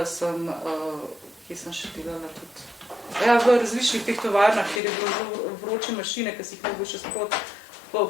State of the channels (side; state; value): right; drops out; at 4.8 s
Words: sem, kje sem še delala tudi, v različnih teh tovarnah, kjer je bilo vroče mašine, ki si jih mogo še sprot